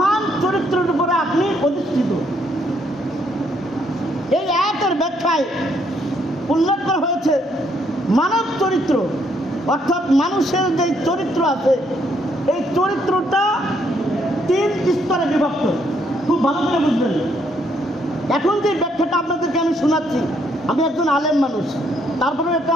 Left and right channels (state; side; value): normal; both; correlation 0.71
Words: চরিত্রের উপরে আপনি অধিষ্ঠিত। এই আয়াতের ব্যাখ্যায় উল্লেখ করা হয়েছে মানব চরিত্র, অর্থাৎ মানুষের যে চরিত্র আছে এই চরিত্রটা 3 স্তরে বিভক্ত। খুব ভালো করে বুঝবেন। এখন যে ব্যাখ্যাটা আপনাদেরকে আমি শোনাচ্ছি, আমি একজন আলেম মানুষ, তারপরে এটা